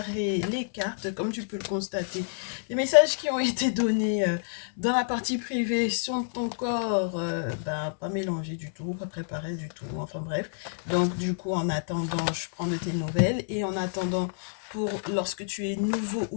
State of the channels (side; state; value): right; silent; digital silence